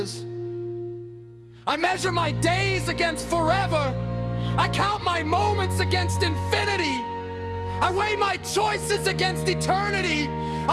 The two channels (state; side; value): identical; both; correlation 1.00